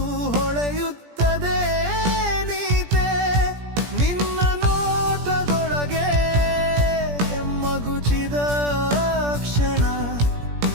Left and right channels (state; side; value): late; left; 17 ms